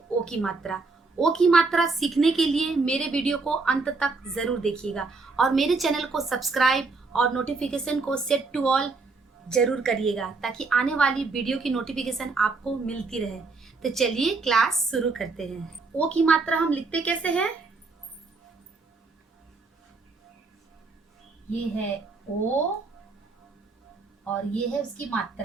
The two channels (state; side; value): quieter; left; 4.0 dB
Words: ओ की मात्रा। ओ की मात्रा सीखने के लिए मेरे वीडियो को अंत तक जरूर देखिएगा और मेरे चैनल को सब्सक्राइब और नोटिफिकेशन को सेट टू ऑल जरूर करिएगा ताकि आने वाली वीडियो की नोटिफिकेशन आपको मिलती रहे। तो चलिए क्लास शुरू करते हैं। ओ की मात्रा हम लिखते कैसे हैं? ये है ओ और ये है उसकी